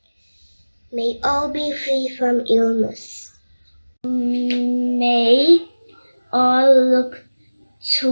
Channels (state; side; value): inverted; both; correlation -1.00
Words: May all be free from illness. May all look